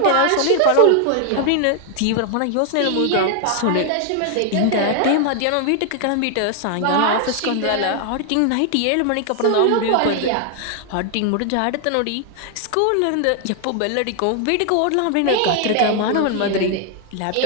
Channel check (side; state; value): both; different; correlation 0.00